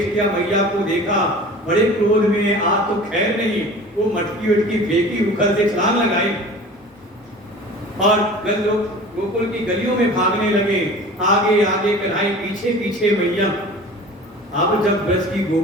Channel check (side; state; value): both; normal; correlation 0.41